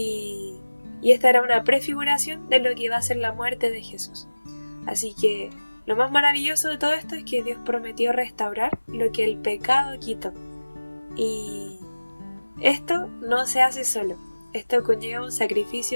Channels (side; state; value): both; inverted; correlation -1.00